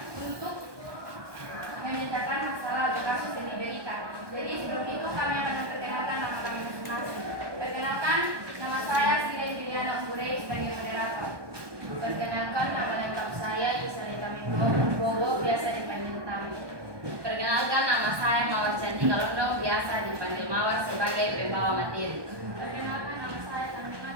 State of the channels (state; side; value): late; left; 1.2 ms